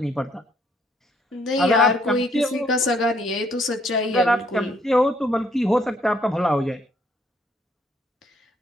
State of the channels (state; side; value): normal; both; correlation 0.68